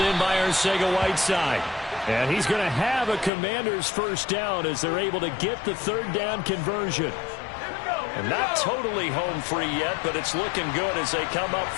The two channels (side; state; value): right; drops out; at 3.3 s